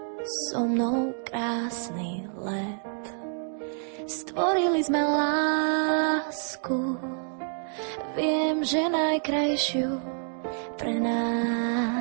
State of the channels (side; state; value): left; silent; 60 dB below the other